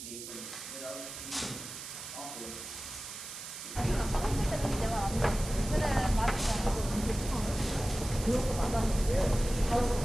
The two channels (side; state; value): right; noise; hiss, 10 dB below the sound